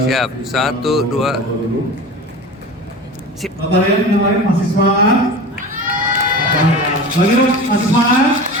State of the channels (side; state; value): both; normal; correlation 0.33